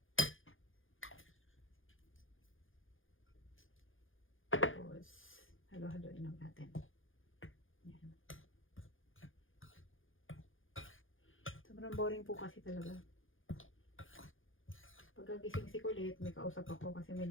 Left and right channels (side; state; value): right; late; 0.58 ms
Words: Tapos, halo-haloin lang natin. Yan. Sobrang boring po kasi talaga. Pagkagising si Kulit, may kausap ako kasi may